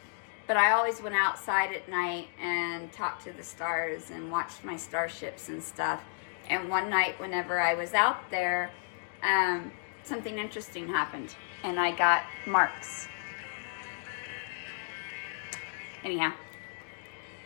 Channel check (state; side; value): silent; right; digital silence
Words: But I always went outside at night and talked to the stars and watched my starships and stuff. And one night, whenever I was out there, something interesting happened, and I got marks. Anyhow,